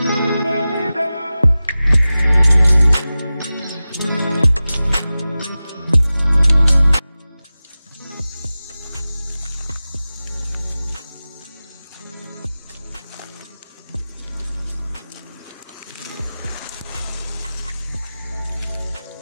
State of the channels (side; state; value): both; inverted; correlation -0.96